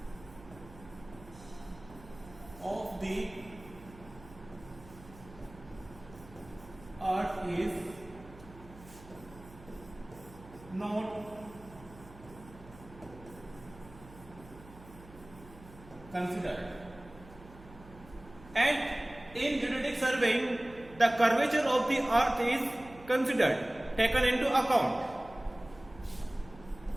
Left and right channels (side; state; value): right; noise; hum, 20 dB below the sound